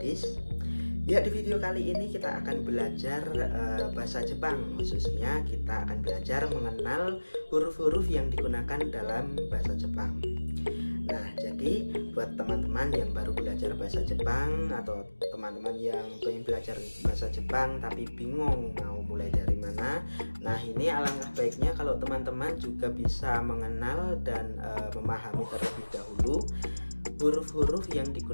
Ya, di video kali ini kita akan belajar bahasa Jepang. Khususnya kita akan belajar mengenal huruf-huruf yang digunakan dalam bahasa Jepang. Nah, jadi buat teman-teman yang baru belajar bahasa Jepang atau teman-teman yang pengen belajar bahasa Jepang tapi bingung mau mulai dari mana, nah ini alangkah baiknya kalau teman-teman juga bisa mengenal dan memahami terlebih dahulu huruf-huruf yang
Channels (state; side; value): inverted; both; correlation -1.00